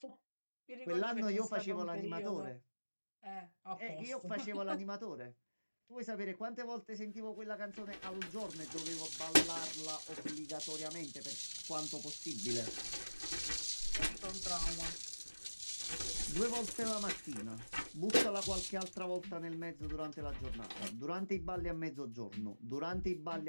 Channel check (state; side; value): inverted; both; correlation -1.00